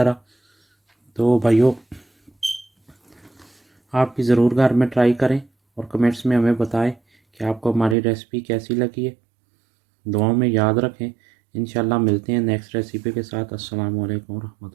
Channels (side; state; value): left; drops out; at 8.0 s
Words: तो भाइयों, आप भी ज़रूर घर में ट्राई करें और कमेंट्स में हमें बताएं कि आपको हमारी रेसिपी कैसी लगी है। दुआओं में याद रखें। इंशाल्लाह मिलते हैं नेक्स्ट रेसिपी के साथ। अस्सलाम वालेकुम